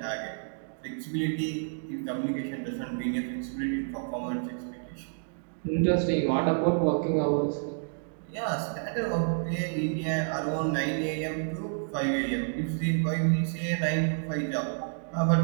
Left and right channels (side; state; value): left; silent; digital silence